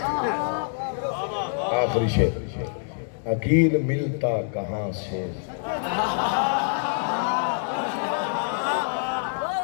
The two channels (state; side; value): silent; right; digital silence